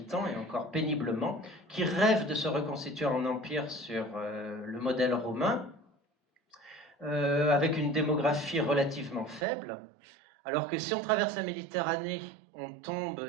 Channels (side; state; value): left; drops out; at 9.5 s